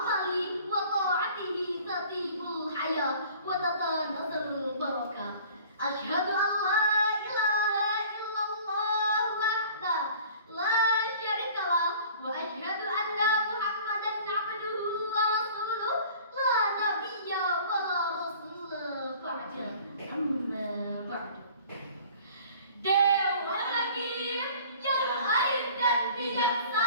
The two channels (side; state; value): both; inverted; correlation -0.48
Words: wa ta'atihi tatibul hayat wa tatanazzalul barakah. Asyhadu an la ilaha illallah wahdahu la syarikalah wa asyhadu anna Muhammadan abduhu wa rasuluh la nabiyya wa la rasula ba'da. Amma ba'du. Dewa Hakim yang arif dan